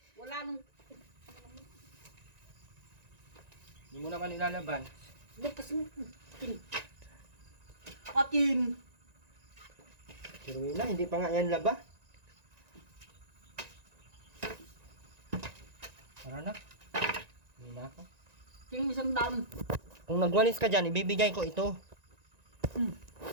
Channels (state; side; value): late; left; 1.9 ms